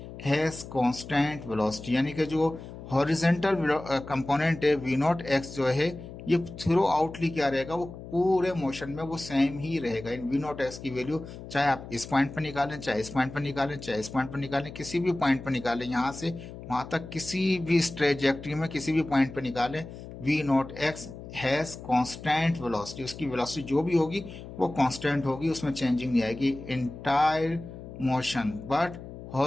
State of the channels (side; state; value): left; noise; hum, 13 dB below the sound